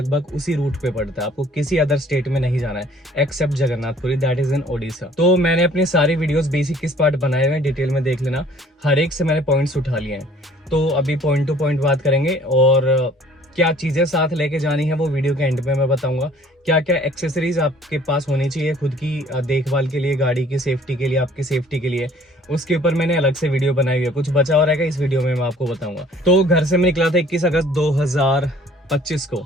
उसी रूट पे पड़ता है, आपको किसी अदर स्टेट में नहीं जाना है except Jagannath Puri, that is in Odisha. तो मैंने अपनी सारी वीडियोस बेसिक किस पार्ट बनाए हुए हैं डिटेल में देख लेना, हर एक से मैंने पॉइंट्स उठा लिए हैं। तो अभी पॉइंट टू पॉइंट बात करेंगे, और क्या चीजें साथ लेके जानी है वो वीडियो के एंड में मैं बताऊंगा। क्या क्या एक्सेसरीज आपके पास होनी चाहिए खुद की देखभाल के लिए, गाड़ी की सेफ्टी के लिए, आपकी सेफ्टी के लिए, उसके ऊपर मैंने अलग से वीडियो बनाई हुई है। कुछ बचा हो रहेगा इस वीडियो में मैं आपको बताऊंगा। तो घर से मैं निकला था 21 अगस्त 2025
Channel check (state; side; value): normal; both; correlation 0.55